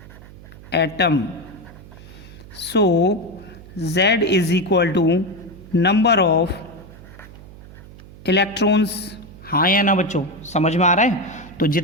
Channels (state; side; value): noise; right; hum, 18 dB below the sound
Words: atom, so Z is equal to number of electrons। हाँ या ना बच्चों, समझ में आ रहा है? तो